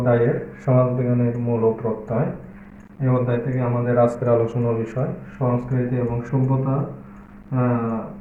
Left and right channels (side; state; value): both; identical; correlation 1.00